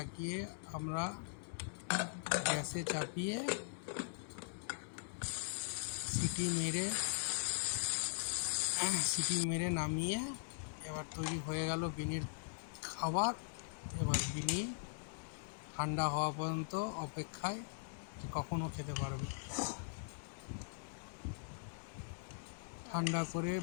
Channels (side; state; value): right; silent; digital silence